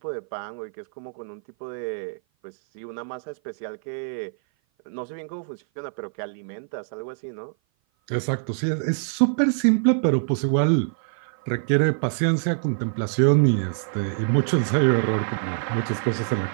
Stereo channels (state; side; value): silent; left; 56 dB below the other